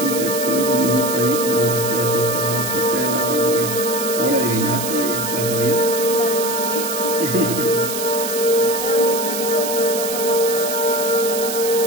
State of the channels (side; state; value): right; noise; hiss, 5 dB below the sound